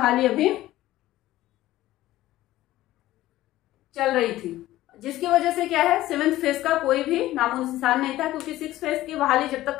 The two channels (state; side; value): quieter; right; 15.5 dB